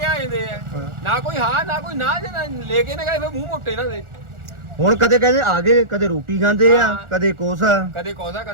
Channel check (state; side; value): late; left; 1.4 ms